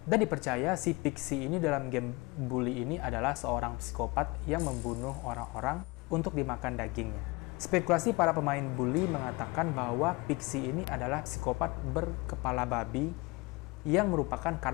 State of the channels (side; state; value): right; quieter; 24.9 dB